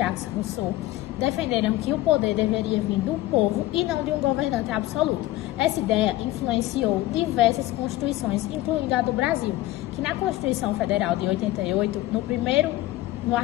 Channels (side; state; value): right; quieter; 16.3 dB